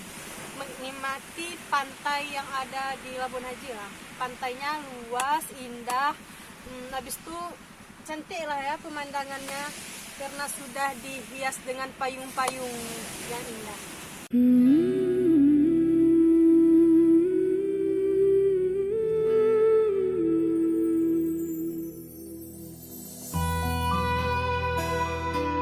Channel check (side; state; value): both; identical; correlation 1.00